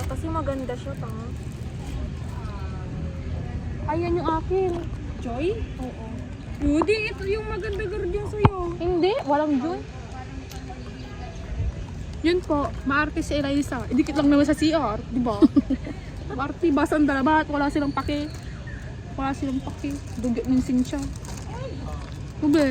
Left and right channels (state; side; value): identical; both; correlation 1.00